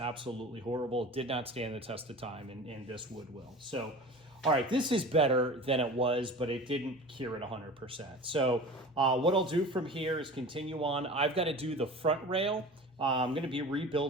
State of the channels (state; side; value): normal; both; correlation 0.36